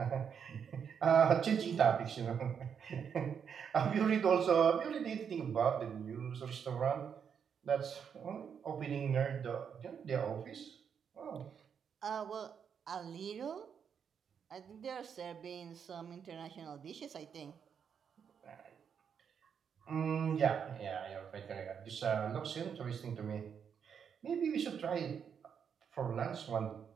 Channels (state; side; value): quieter; left; 7.3 dB